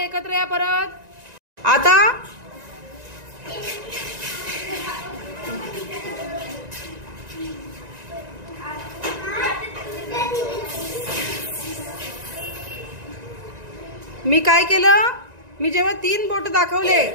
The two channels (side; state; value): left; late; 1.9 ms